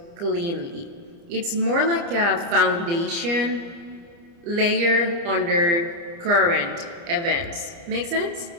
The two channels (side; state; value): left; late; 29 ms